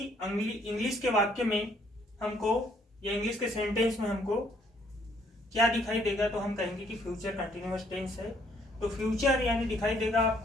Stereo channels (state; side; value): normal; both; correlation 0.66